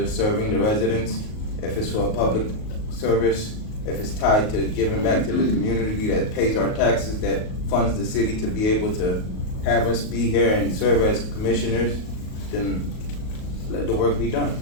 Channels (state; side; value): late; right; 38 ms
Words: serving the residents, if it's for a public service, if it's tied to giving back to the community that pays our taxes, that funds the city to be able to have us be here and serve as commissioners, then let the work be done.